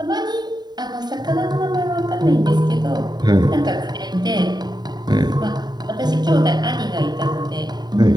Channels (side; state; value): left; late; 0.20 ms